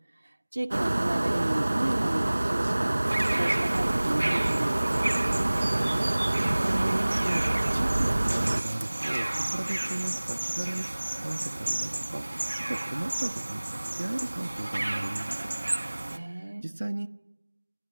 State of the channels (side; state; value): both; inverted; correlation -1.00